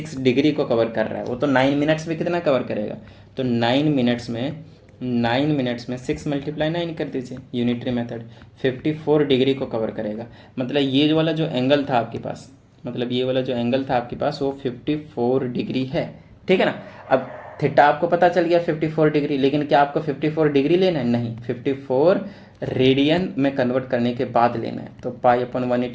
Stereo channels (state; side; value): identical; both; correlation 1.00